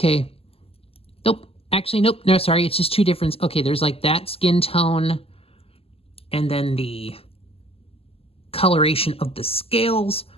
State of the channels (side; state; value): right; late; 0.28 ms